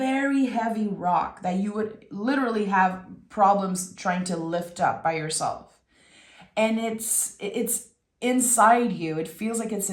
heavy rock that you would literally have problems trying to lift up by yourself. And it's inside you. It feels like it's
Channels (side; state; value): both; identical; correlation 1.00